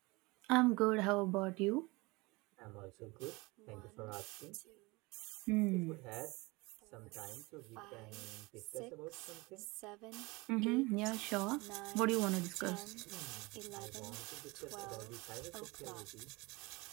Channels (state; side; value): quieter; left; 24.2 dB